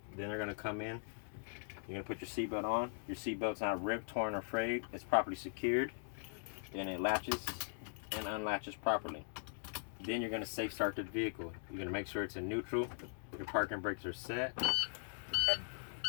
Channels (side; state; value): right; silent; digital silence